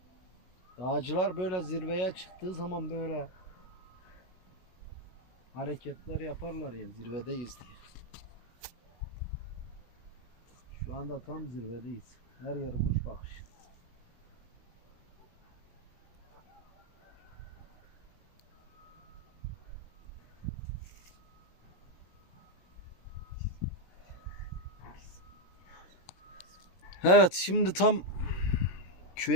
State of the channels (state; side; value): late; right; 16 ms